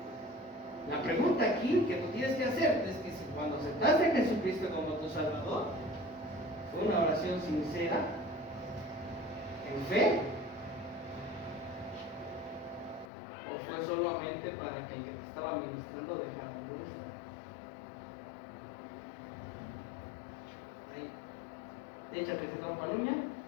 La pregunta aquí que tú tienes que hacerte es que si cuando aceptaste a Jesucristo como tu Salvador, fue una oración sincera, en fe, o fue solamente para que el que te estaba ministrando dejara de molestar. Ahí, échate ese campaluña,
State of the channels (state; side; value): drops out; right; at 13.1 s